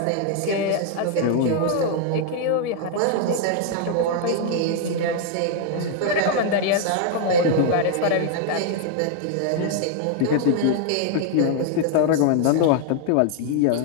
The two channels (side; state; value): both; different; correlation 0.00